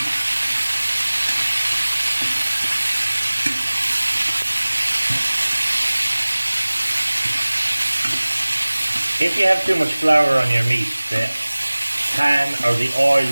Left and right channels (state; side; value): inverted; both; correlation -1.00